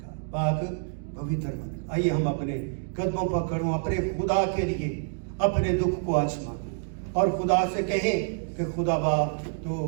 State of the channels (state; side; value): silent; left; digital silence